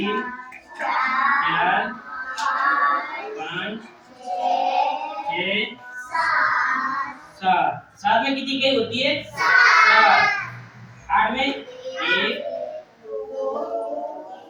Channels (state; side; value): identical; both; correlation 1.00